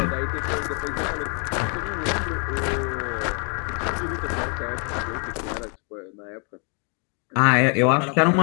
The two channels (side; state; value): right; quieter; 38.2 dB